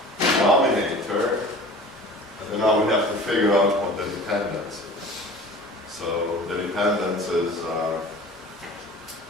denominator, and then now we have to figure out what the dependence is. So the dependences are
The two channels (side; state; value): both; normal; correlation 0.41